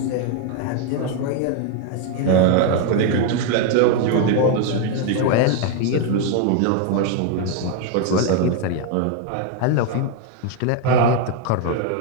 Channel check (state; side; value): different; both; correlation 0.01